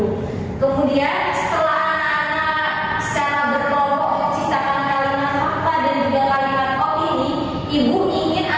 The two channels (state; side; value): identical; both; correlation 1.00